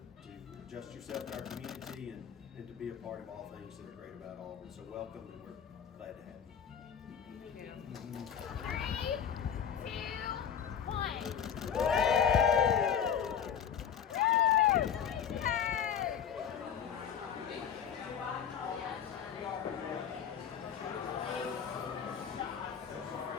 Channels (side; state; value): right; quieter; 8.3 dB